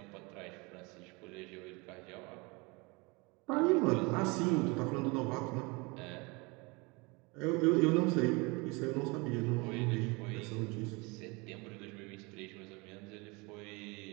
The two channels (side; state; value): left; quieter; 27.2 dB